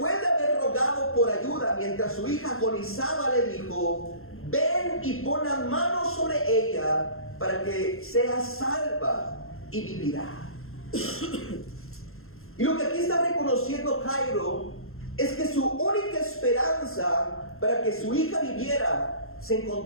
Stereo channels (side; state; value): right; late; 0.61 ms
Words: de haber rogado por ayuda mientras su hija agonizaba, le dijo: ven y pon las manos sobre ella para que sea salva y vivirá. Y lo que aquí está reconociendo Jairo es que su única esperanza para que su hija viviera se